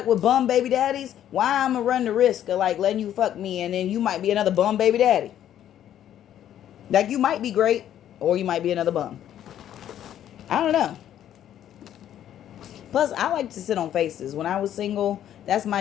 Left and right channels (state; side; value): quieter; right; 11.0 dB